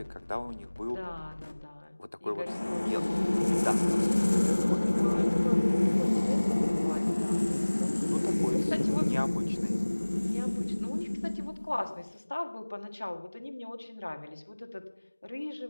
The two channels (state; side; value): inverted; both; correlation -1.00